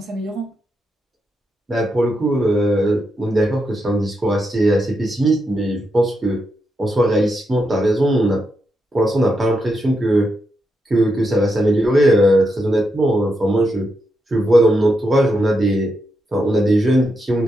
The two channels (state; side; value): normal; both; correlation 0.84